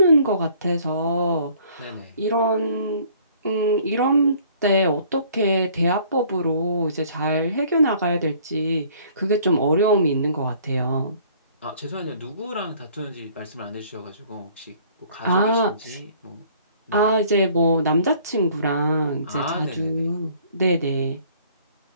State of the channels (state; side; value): inverted; both; correlation -0.56